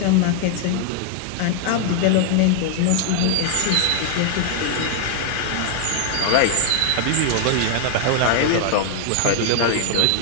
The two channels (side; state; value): both; different; correlation 0.00